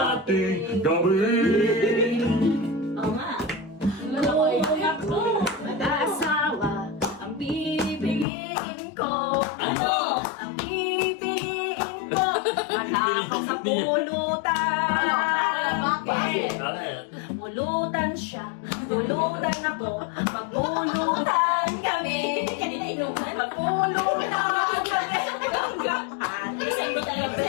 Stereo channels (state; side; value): drops out; right; at 8.2 s